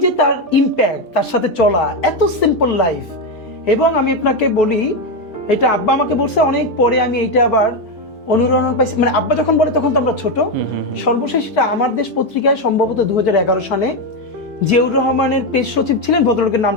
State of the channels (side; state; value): right; late; 3.0 ms